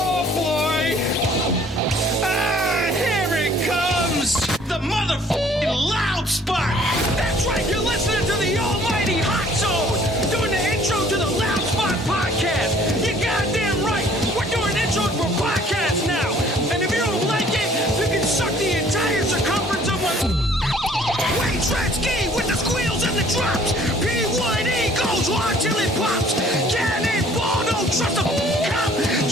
boy! Here it comes! The motherfucking Loud Spot! That's right, you're listening to the almighty Hot Zone! Doing the intro to the Loud Spot podcast! You're goddamn right! We're doing intros for podcasts now! And if you don't like it, you can suck the entire circumference of my Wayne Tretzky with the squeals and the drops! P1E goes hard till it pops! Cannonball, don't trust a cop!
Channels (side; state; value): both; normal; correlation 0.56